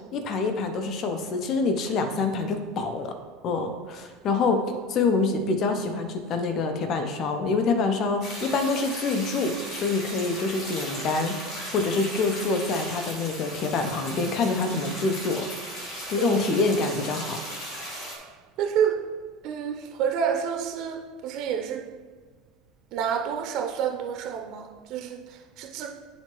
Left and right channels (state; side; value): normal; both; correlation 0.31